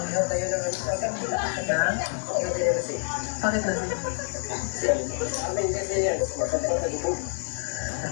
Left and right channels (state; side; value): silent; right; 60 dB below the other